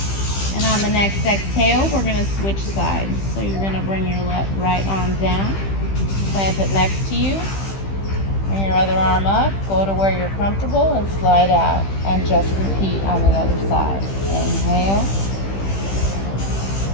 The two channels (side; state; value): right; late; 15 ms